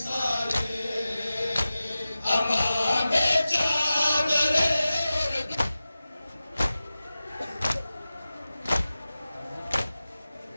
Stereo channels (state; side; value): inverted; both; correlation -0.95